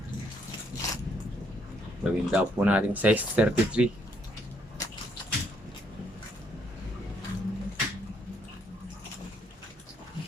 Gawin daw po natin size 33.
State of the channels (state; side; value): normal; both; correlation 0.71